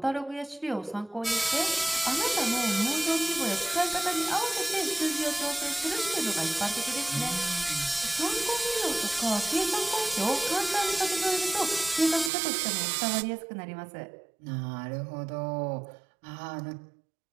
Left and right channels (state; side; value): drops out; left; at 12.3 s